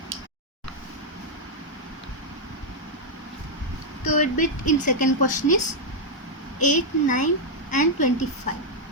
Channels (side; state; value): both; normal; correlation -0.02